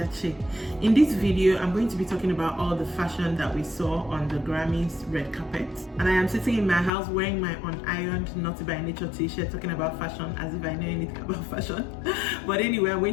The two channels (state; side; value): drops out; right; at 6.9 s